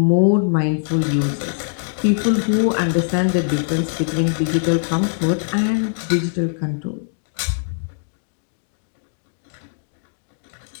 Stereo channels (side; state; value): right; silent; digital silence